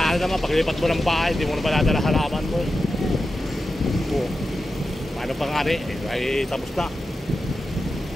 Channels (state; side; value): normal; both; correlation 0.91